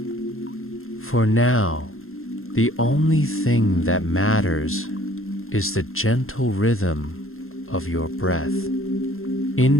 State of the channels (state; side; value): late; right; 0.61 ms